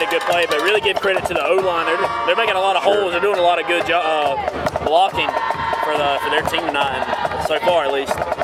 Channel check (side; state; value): both; identical; correlation 1.00